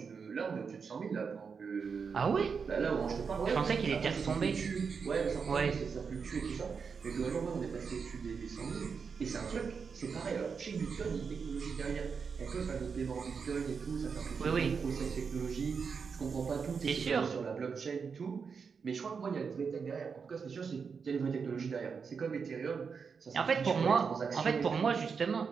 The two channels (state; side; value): quieter; left; 5.7 dB